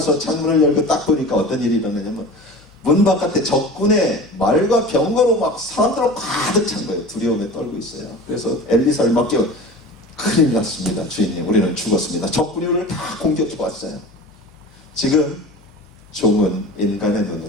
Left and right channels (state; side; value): noise; left; hum, 27 dB below the sound